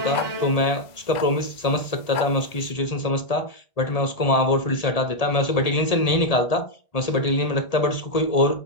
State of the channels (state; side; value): late; right; 1.8 ms